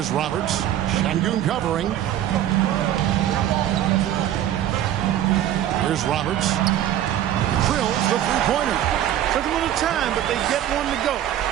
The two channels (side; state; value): left; quieter; 11.7 dB